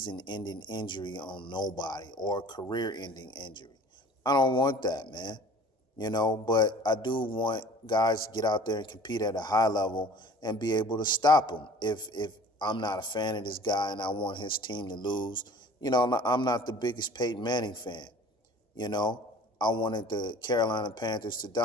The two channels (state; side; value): normal; both; correlation 0.47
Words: injury on nobody or a career-ending injury. I don't want that, man. You know, but I do want guys to get out there and compete at a high level and be able to stop them. If I'm not a fan of this guy and I want his team to lose, you know, I'm not the biggest Peyton Manning fan. You know, I wanted the Carolina Panthers to